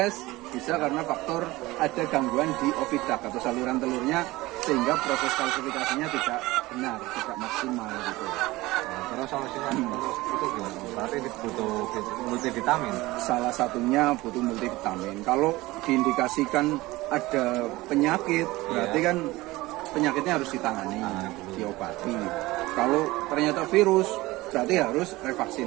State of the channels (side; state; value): left; quieter; 19.6 dB